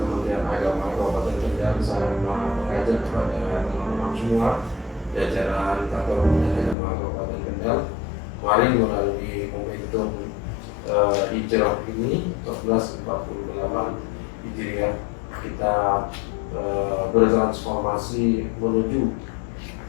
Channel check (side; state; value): right; drops out; at 6.8 s